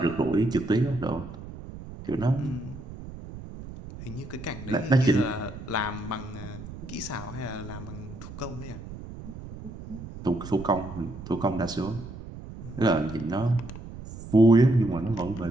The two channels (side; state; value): right; noise; rumble, 12 dB below the sound